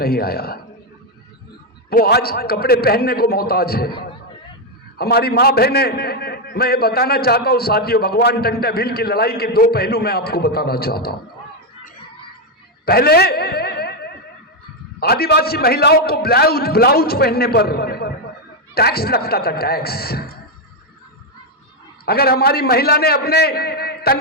आया। वो आज कपड़े पहनने को मोहताज है। हमारी मां बहने, मैं ये बताना चाहता हूं साथियों, भगवान टंटा भील की लड़ाई के दो पहलू मैं आपको बताना चाहता हूं। पहले आदिवासी महिलाओं को ब्लाउज पहनने पर टैक्स लगता था, टैक्स। अगर हमारी महिला ने अपने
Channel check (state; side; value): normal; both; correlation 0.04